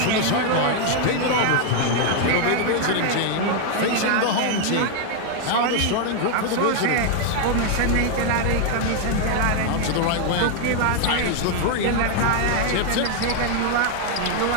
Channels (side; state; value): both; different; correlation 0.00